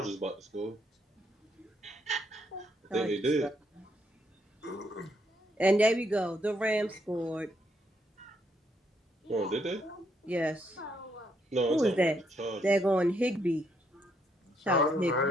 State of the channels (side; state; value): both; normal; correlation 0.74